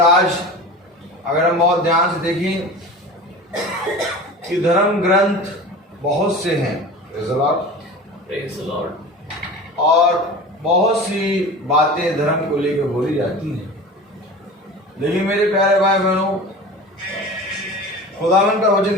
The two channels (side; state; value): both; normal; correlation 0.35